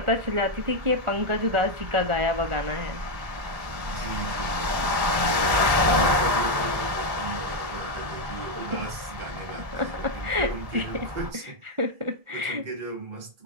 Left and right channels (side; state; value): left; late; 1.1 ms